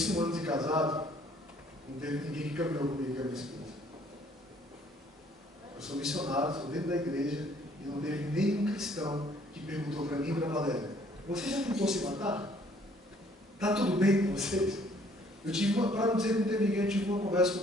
1 ano de casado, não teve ninguém que caminhou comigo, que é a minha esposa. Eu sou missionário, estou dentro da igreja, e não teve nenhum cristão que perguntou para mim e para a Valéria: você já tentou se matar? Está tudo bem com vocês? Eu tive para não dizer que não teve ninguém, eu tive uma conversa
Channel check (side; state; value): both; normal; correlation 0.61